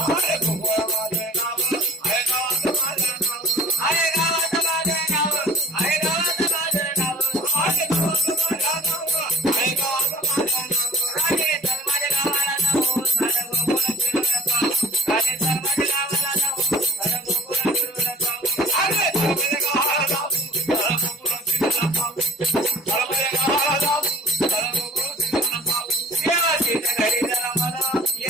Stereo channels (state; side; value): normal; both; correlation 0.44